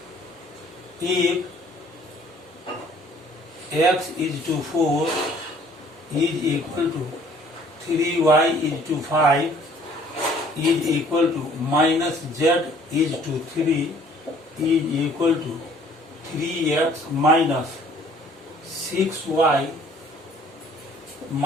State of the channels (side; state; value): both; normal; correlation 0.57